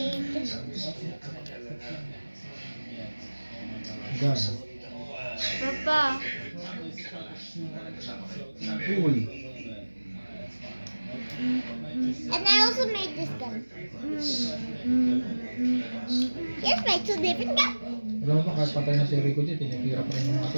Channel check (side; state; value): both; inverted; correlation -1.00